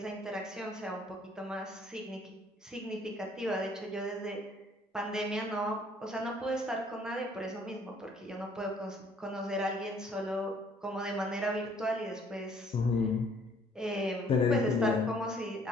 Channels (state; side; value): normal; both; correlation 0.61